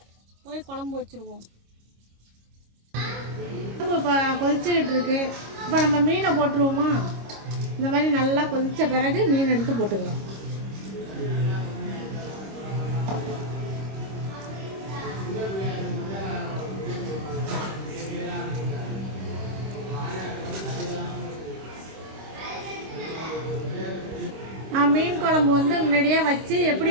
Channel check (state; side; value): late; left; 26 ms